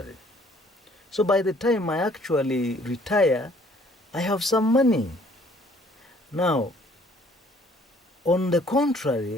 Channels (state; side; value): normal; both; correlation 0.60